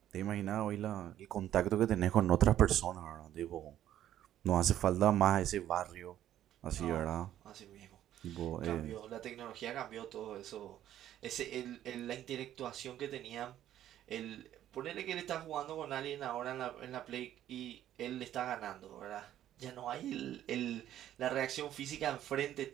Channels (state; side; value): quieter; left; 11.9 dB